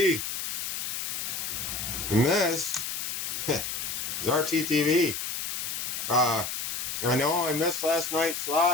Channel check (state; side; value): noise; left; hiss, 3 dB below the sound